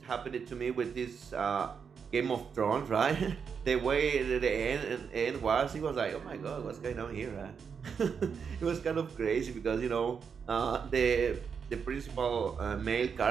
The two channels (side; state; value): left; quieter; 6.4 dB